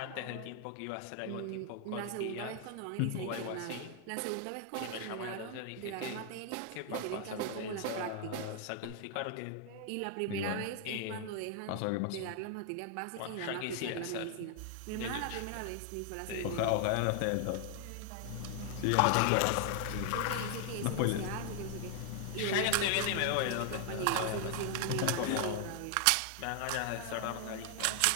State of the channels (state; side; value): different; both; correlation 0.00